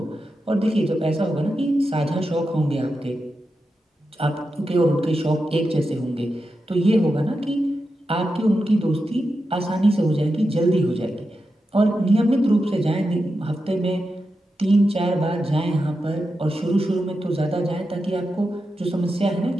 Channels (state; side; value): normal; both; correlation 0.89